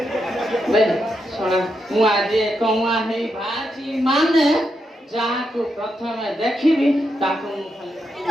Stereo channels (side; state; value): both; normal; correlation 0.83